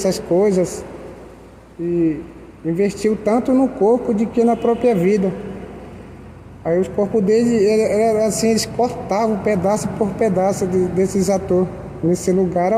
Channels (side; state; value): both; identical; correlation 1.00